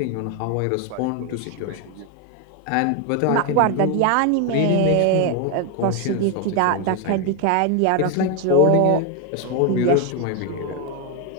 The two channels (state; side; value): different; both; correlation 0.01